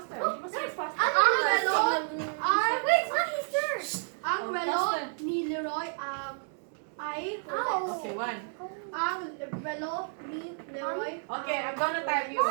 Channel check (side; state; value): left; silent; 58 dB below the other